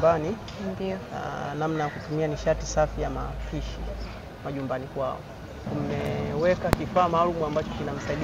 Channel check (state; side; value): identical; both; correlation 1.00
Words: Ndio. Namna ya kutumia nishati safi ya mapishi majumbani kwao. Tumeweka kifaa maalum ambacho